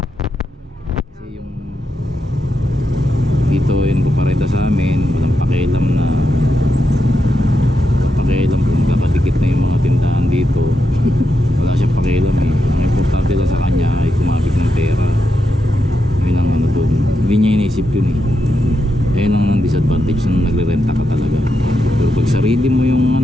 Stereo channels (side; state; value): both; normal; correlation 0.85